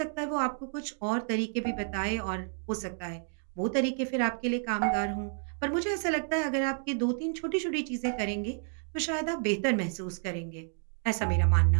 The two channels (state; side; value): silent; left; 57 dB below the other